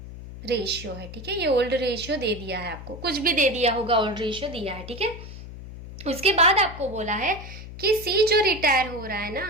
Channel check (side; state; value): left; noise; hum, 12 dB below the sound